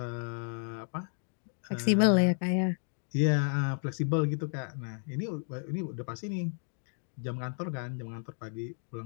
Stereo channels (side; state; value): right; silent; 56 dB below the other